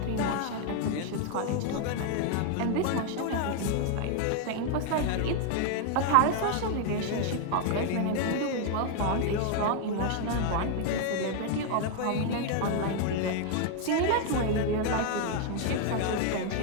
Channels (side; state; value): both; different; correlation 0.00